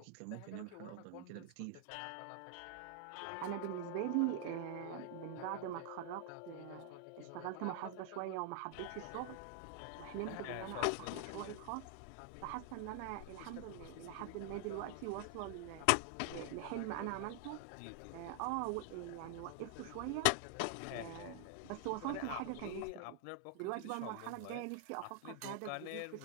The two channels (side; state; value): both; different; correlation 0.00